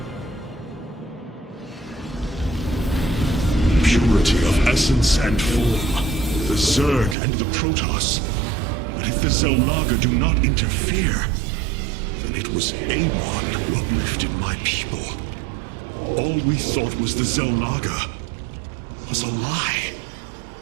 Purity of essence and form, the Zerg and the Protoss. But if the Xel'Naga do not interfere, then it was Amon who uplifted my people. All we thought was the Xel'Naga was a lie.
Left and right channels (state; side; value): drops out; left; at 7.2 s